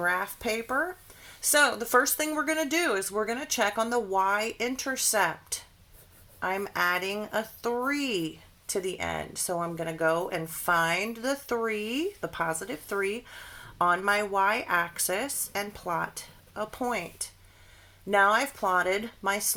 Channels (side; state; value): both; identical; correlation 1.00